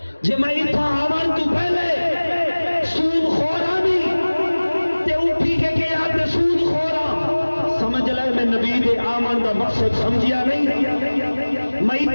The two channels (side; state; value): both; inverted; correlation -1.00